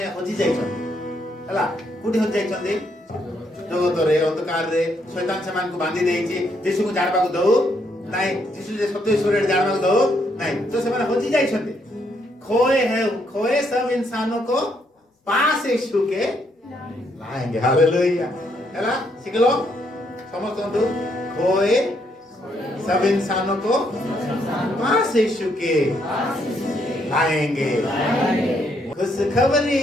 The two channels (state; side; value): normal; both; correlation 0.74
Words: हजी जाइछन हला कुटी हजी जाइछन जगत रे अंधकार रे शैतान समान को बांधी देइछि यीशु को जाणबा को दउ नहीं यीशु जे सत्य ईश्वर जाणबा को दउ नहीं तो से माने हजी जाइछन खोए सब इंसानों को पास यीशु के लाएंगे हालेलुया हला सिखलो समझतो खोए सब इंसानों को पास यीशु के लाएंगे खुशखबरी